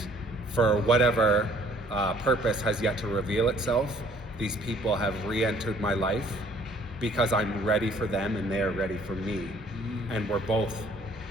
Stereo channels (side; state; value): both; normal; correlation 0.58